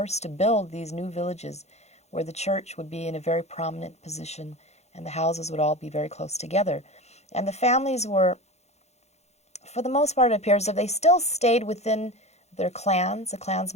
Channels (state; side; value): late; right; 0.32 ms